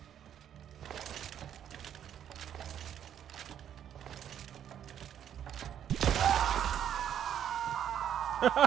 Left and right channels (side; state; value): left; quieter; 9.8 dB